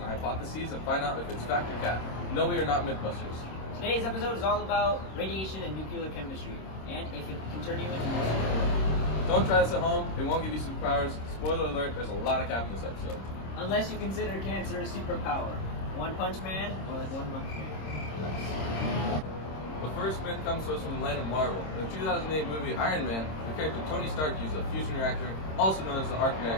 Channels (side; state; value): right; late; 26 ms